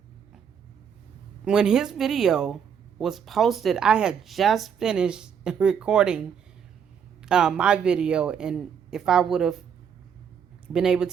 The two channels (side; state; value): left; quieter; 7.5 dB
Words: when his video was posted, I had just finished recording my video, and if I would have been able